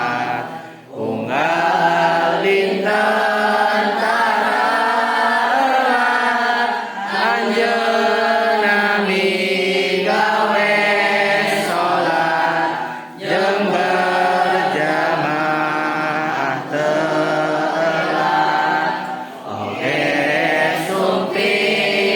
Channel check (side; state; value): both; identical; correlation 1.00